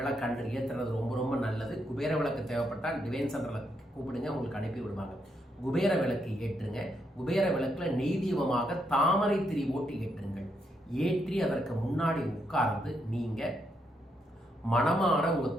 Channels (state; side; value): normal; both; correlation 0.78